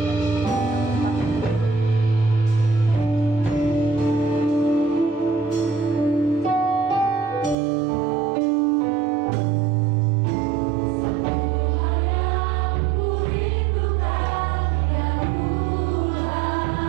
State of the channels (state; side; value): drops out; left; at 7.6 s